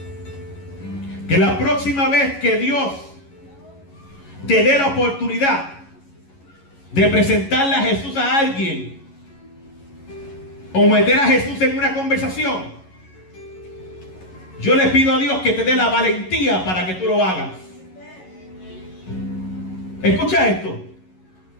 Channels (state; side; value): late; right; 11 ms